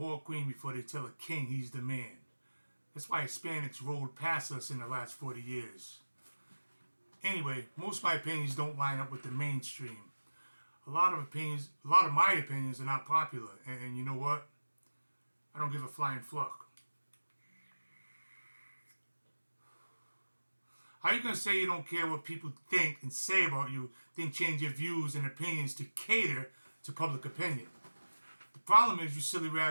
queen before they tell a king he's the man. That's why Hispanics rolled past us in the last 40 years. Anyway, most of my opinions don't line up with the mainstream. A lot of my opinions are not popular. And you know what? I don't give a flying fuck. How are you going to say you don't care what people think and say about you, then change your views and opinions to cater to public opinion? The problem is you silly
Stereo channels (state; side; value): inverted; both; correlation -1.00